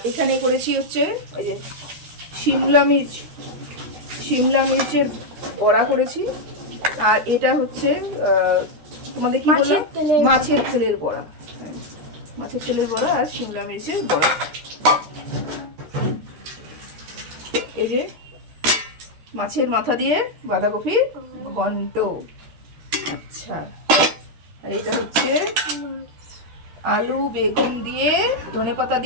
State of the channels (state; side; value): late; left; 13 ms